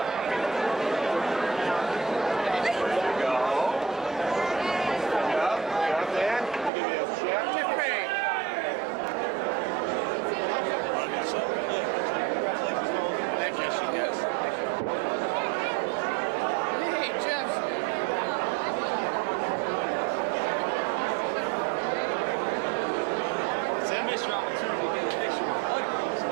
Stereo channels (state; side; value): drops out; left; at 6.7 s